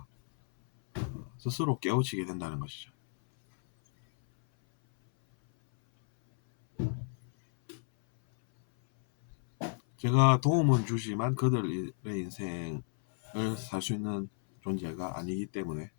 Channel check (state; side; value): silent; right; 57 dB below the other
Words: 스스로 깨우치게 된다는 것이죠. 제가 도움은 주지만 그들의 인생을 살 수 있는 존재가 아니기 때문에